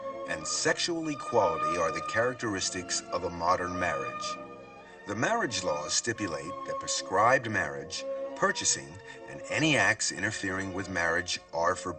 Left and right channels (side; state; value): both; identical; correlation 1.00